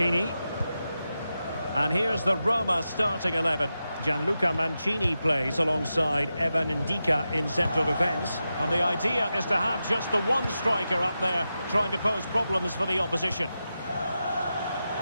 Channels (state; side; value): inverted; both; correlation -0.90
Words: And here's the Roma starting 11. Gianluca Mancini plays alongside Evan Ndika in central defence. And the idea is to have just the one striker up there trying to pose problems for the opposition.